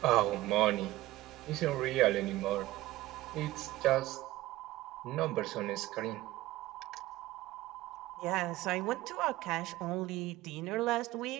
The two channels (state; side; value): quieter; left; 17.0 dB